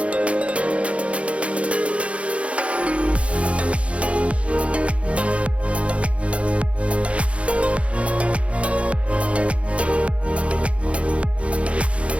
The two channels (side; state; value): left; late; 0.062 ms